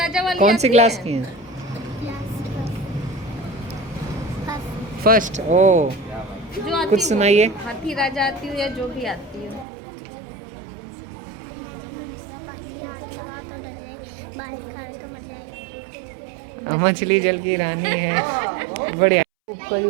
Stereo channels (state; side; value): drops out; left; at 9.7 s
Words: वाली कौन सी आती क्लास है? की हैं? फर्स्ट। ओ जो आती कुछ हो। सुनाइए। हाथी राजा आती हो या जो भी आती हो। मछली जल की रानी है। बढ़िया।